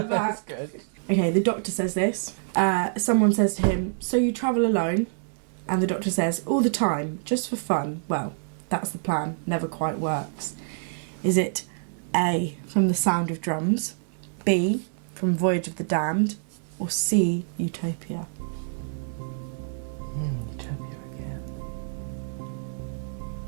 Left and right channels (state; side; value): silent; left; digital silence